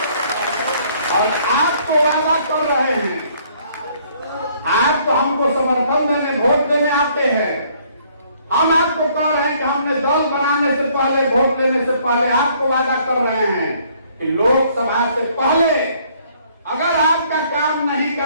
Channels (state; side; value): inverted; both; correlation -0.63